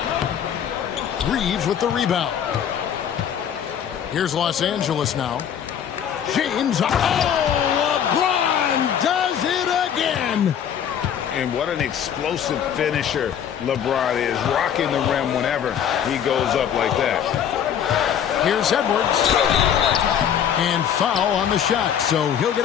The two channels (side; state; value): right; quieter; 8.9 dB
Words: Reeves with the rebound. Here's Los Angeles now. James. Oh, LeBron does it again. And what an explosive finisher LeBron is, rocking the rim whenever he goes up like that. Here's Edwards. And foul on the shot, so he'll get